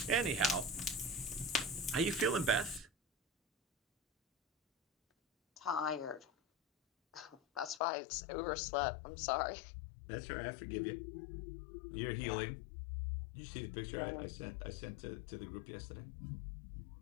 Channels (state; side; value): drops out; right; at 7.8 s